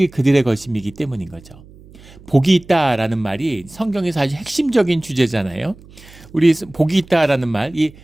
그들의 것임이기 때문인 거죠. 복이 있다라는 말이 성경에서 아주 핵심적인 주제잖아요. 우리 복이 있다라는 말, 이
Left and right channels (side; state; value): right; noise; hum, 22 dB below the sound